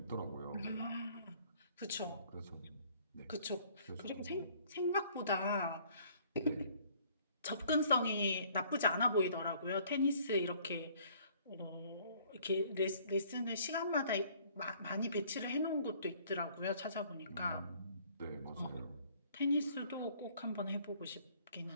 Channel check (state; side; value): inverted; both; correlation -0.58